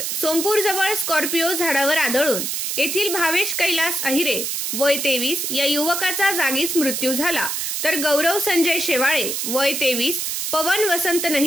सोमपूर जवळ स्कॉर्पिओ झाडावर आदळून येथील भावेश कैलास अहिरे वय 23 या युवकाचा जागीच मृत्यू झाला, तर गौरव संजय शेवाळे वय 23, पवन वसंत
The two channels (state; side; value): noise; right; hiss, 2 dB below the sound